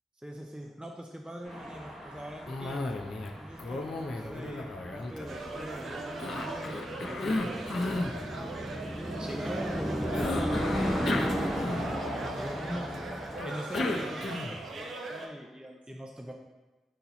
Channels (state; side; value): normal; both; correlation 0.86